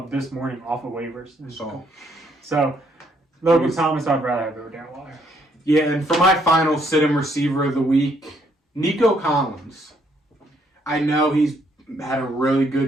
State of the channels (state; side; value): normal; both; correlation 0.69